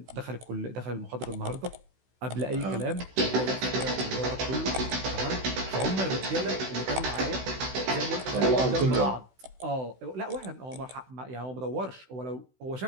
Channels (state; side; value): late; left; 16 ms